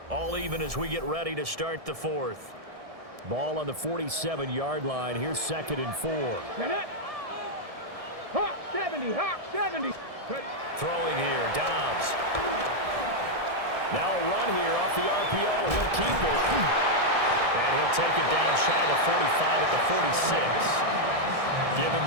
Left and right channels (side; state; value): left; late; 1.7 ms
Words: All even as we get ready to start the fourth. Ball on the 47-yard line. Here's 2nd and 4. Hawk 70, Hawk 70. Throwing here, Dobbs. Now a run here off the RPO. He'll keep it. And he'll take it down shy of the 45 at the 46. Give him